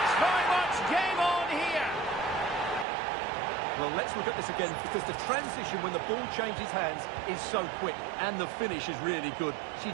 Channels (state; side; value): drops out; left; at 2.9 s